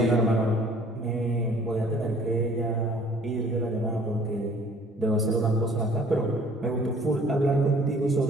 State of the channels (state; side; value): normal; both; correlation 0.55